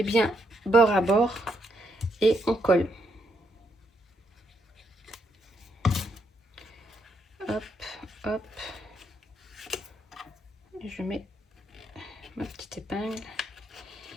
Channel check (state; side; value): normal; both; correlation 0.77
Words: bien bord à bord et on colle. hop. Et je mets ma petite épingle.